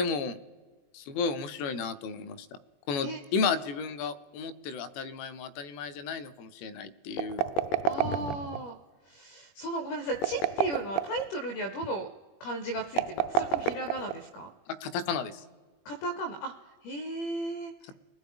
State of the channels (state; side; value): late; right; 21 ms